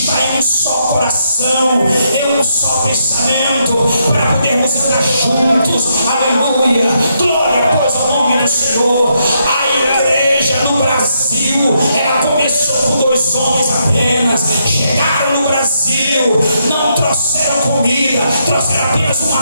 em um só coração, em um só pensamento, para podermos andar juntos. Aleluia. Glória pois ao nome do Senhor. A igreja no Brasil, ela começou com 2 homens apenas. Chegaram no Brasil, não trouxeram comida, trouxeram apenas uma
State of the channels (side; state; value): both; inverted; correlation -0.78